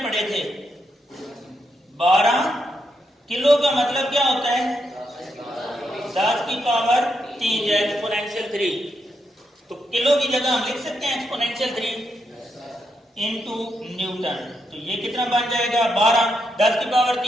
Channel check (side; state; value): both; normal; correlation 0.81